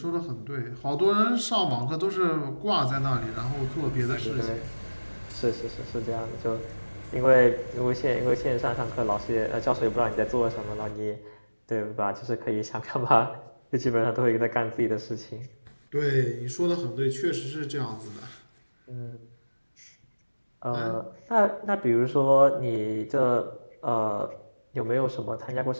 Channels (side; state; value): both; inverted; correlation -1.00